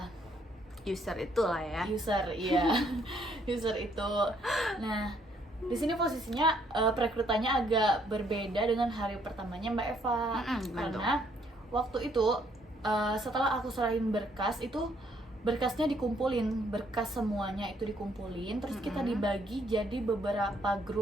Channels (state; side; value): normal; both; correlation 0.68